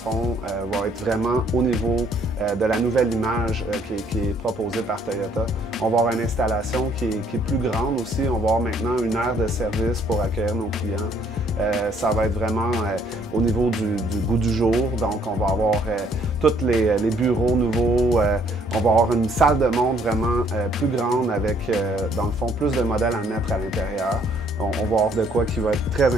va être vraiment au niveau de la nouvelle image qui est proposée par Toyota. On va avoir une installation qui est plus grande aussi. On va avoir maintenant une aire de service pour accueillir nos clients. Ça va être vraiment au niveau du goût du jour. Donc, on va avoir tous les bureaux nouveaux. On va avoir une salle de montre vraiment plus grande avec, dans le fond, plus de modèles à mettre à l'intérieur. On va avoir de quoi qui va être très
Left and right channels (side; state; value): both; normal; correlation 0.65